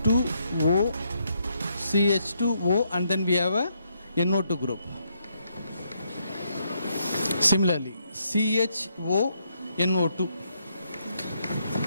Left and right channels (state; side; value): inverted; both; correlation -0.76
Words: CH2O, and then we have a NO2 group. Similarly, CHO, NO2,